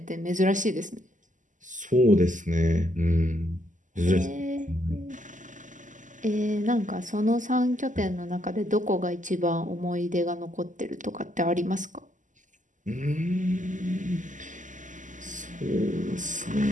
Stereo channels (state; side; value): late; left; 0.37 ms